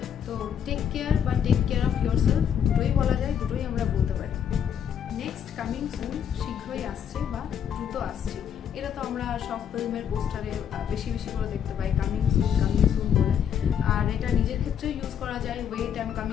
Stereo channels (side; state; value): right; quieter; 8.5 dB